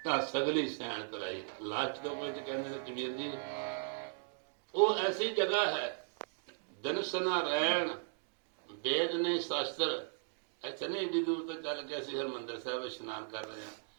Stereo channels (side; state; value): left; silent; digital silence